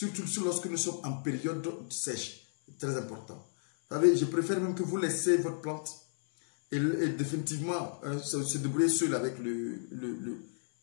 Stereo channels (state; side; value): silent; right; 56 dB below the other